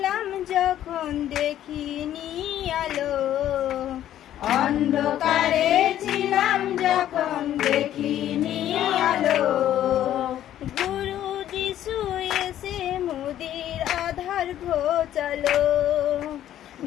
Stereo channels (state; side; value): quieter; right; 11.8 dB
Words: যখন দেখিনি আলো, অন্ধকারে ছিলাম যখন দেখিনি আলো। গুরু যিশু এসে মোদের আধার ঘোচালো,